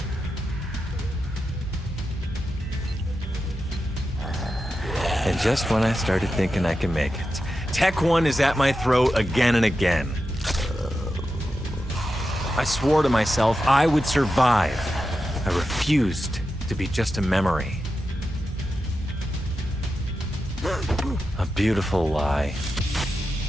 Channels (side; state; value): both; normal; correlation 0.90